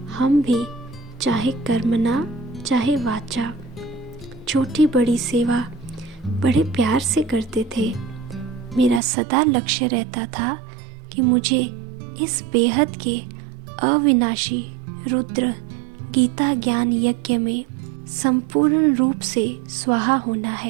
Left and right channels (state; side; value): drops out; left; at 9.0 s